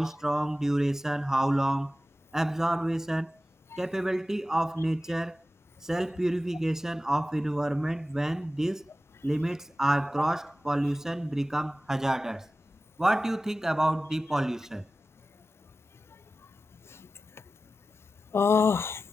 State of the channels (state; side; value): normal; both; correlation 0.95